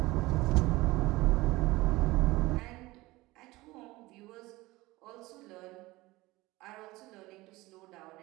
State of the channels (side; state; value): left; quieter; 20.1 dB